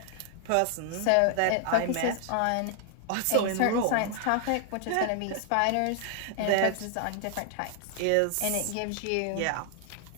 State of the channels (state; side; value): different; both; correlation 0.00